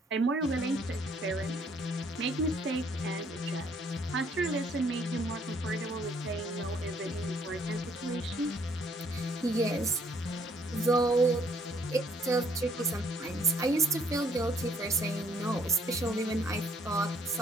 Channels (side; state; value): both; normal; correlation 0.65